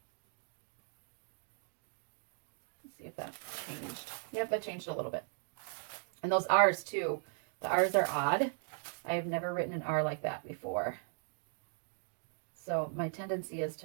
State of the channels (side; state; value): left; silent; 53 dB below the other